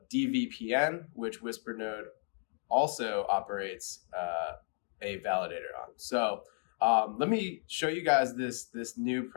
which WhisperNode also operates a validator on. So let me show you guys this new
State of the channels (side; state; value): right; silent; 55 dB below the other